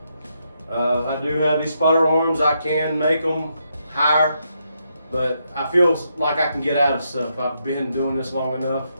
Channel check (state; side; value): inverted; both; correlation -0.80